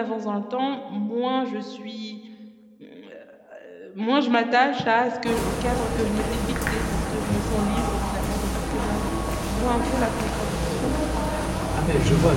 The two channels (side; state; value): both; identical; correlation 1.00